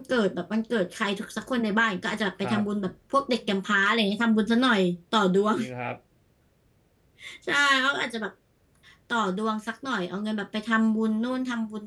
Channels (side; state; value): both; identical; correlation 1.00